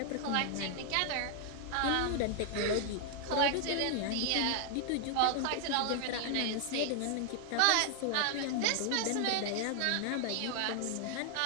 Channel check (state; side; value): different; both; correlation 0.00